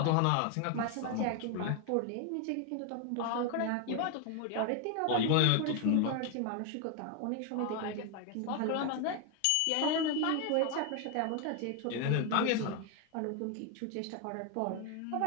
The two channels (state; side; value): different; both; correlation 0.01